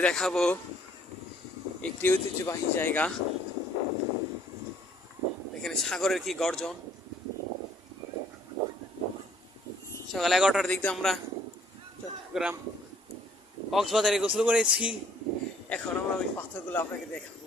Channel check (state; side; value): normal; both; correlation 0.61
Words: দেখাবো একটি ঐতিহ্যবাহী জায়গা। এখানে সাগরের কি গর্জন। সকাল 11টার দিক দিয়ে আমরা চট্টগ্রাম কক্সবাজারে গোসল করেছি। এখন আমরা ওই পাথরগুলো আপনাকে দেখাবো।